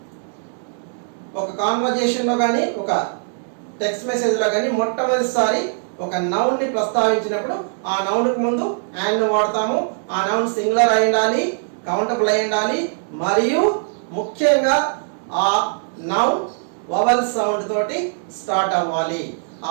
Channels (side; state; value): left; silent; digital silence